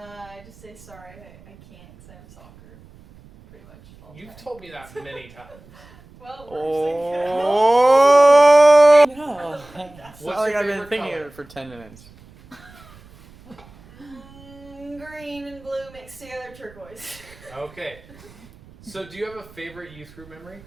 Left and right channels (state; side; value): noise; right; rumble, 24 dB below the sound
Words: just say sorry, I can't because I have soccer, pretty much all the You've time. told me that many times. Well, Oh no! What's It's not like your I've been favorite thinking color? of it for 10 minutes. green and blue mixed together, turquoise. Okay. So do you have a favorite youth group memory?